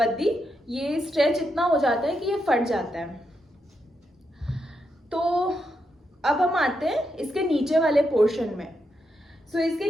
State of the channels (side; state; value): both; normal; correlation 0.83